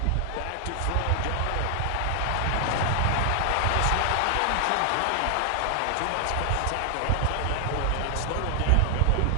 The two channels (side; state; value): both; different; correlation 0.00